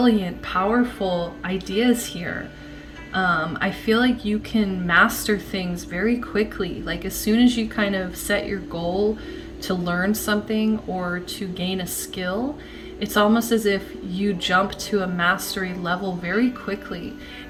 powerful ideas here. I feel like you can master things very quickly. Like as soon as you kind of set your goal to learn something or to gain a skill, it's almost as if you jump to a mastery level very quickly.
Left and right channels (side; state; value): both; identical; correlation 1.00